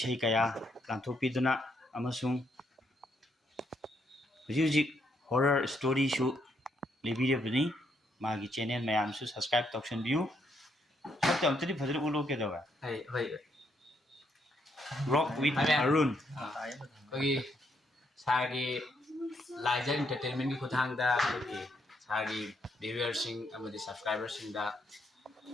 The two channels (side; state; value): both; normal; correlation 0.75